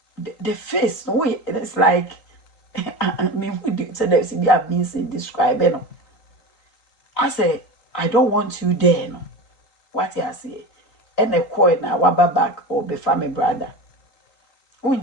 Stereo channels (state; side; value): late; right; 3.8 ms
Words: the face no way it's like me who do so there's be a means in describing no I say I don't want you there no what he say and a coin na waba back or be family brother